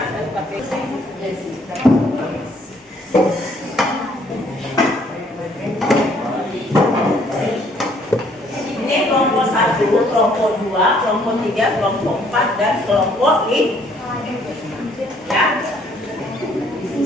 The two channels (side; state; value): both; normal; correlation 0.64